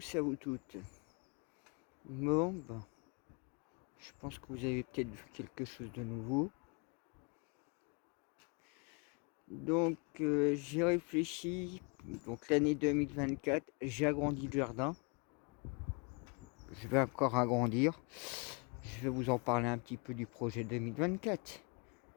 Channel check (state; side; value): quieter; right; 33.2 dB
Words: et à vous toutes. Bon, ben, je pense que vous avez peut-être vu quelque chose de nouveau. Donc, j'ai réfléchi. Donc, l'année 2024, j'ai agrandi le jardin. Je vais encore agrandir. Je vais vous en parler un petit peu du projet 2024.